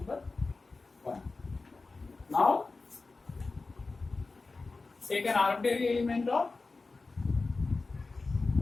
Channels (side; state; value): right; quieter; 3.7 dB